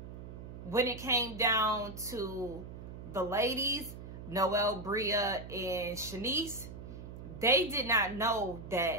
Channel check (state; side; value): noise; right; hum, 11 dB below the sound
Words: it came down to the ladies, Noelle, Bria, and Shanice, they did not know